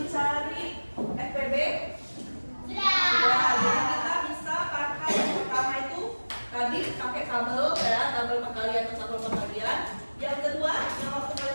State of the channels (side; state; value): both; inverted; correlation -1.00